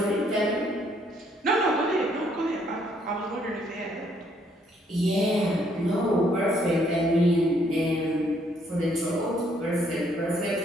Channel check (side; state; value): both; normal; correlation 0.68